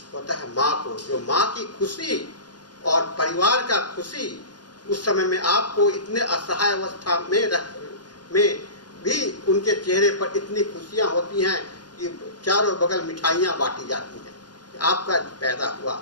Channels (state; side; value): late; right; 0.70 ms